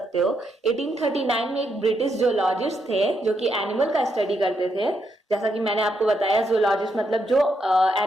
हो, 1839 में एक ब्रिटिश जूलॉजिस्ट थे जो कि एनिमल का स्टडी करते थे। जैसा कि मैंने आपको बताया, जूलॉजिस्ट मतलब जो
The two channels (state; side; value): normal; both; correlation 0.79